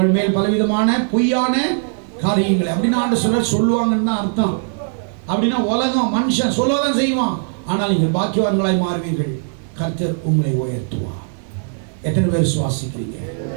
மேல் பலவிதமான பொய்யான காரியங்களை அப்படின்னா ஆண்டவர் சொல்லுவாங்கன்னு தான் அர்த்தம். அப்படின்னா உலகம் மனுஷன் சொல்லதான் செய்வான், ஆனால் நீங்கள் பாக்கியவான்களாய் மாறுவீர்கள், கர்த்தர் உங்களை உயர்த்துவார். எத்தனை பேர் விசுவாசிக்கிறீங்க?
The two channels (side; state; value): left; silent; digital silence